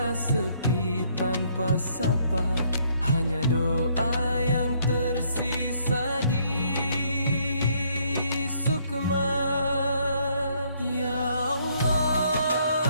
sepi tanpa sapa. Hanya doa yang tersisa di sukma. Ya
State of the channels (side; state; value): both; inverted; correlation -0.67